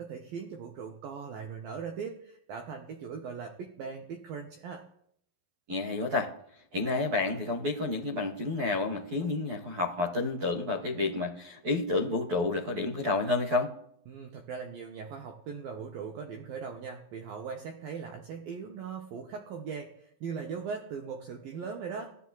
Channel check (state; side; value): late; left; 12 ms